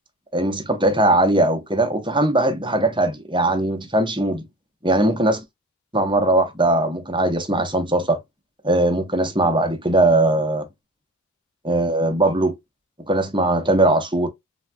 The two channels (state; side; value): normal; both; correlation 0.35